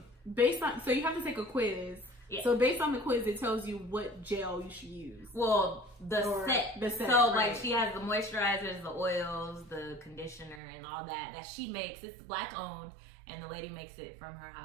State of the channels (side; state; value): left; drops out; at 10.6 s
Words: based on, so you have to take a quiz. Yeah. So based on the quiz, it tells you what gel you should use. Well, the set. So right. like she has the moisturizers, the oils, the conditioner, and all that she makes. It's black owned, and the lady makes it from her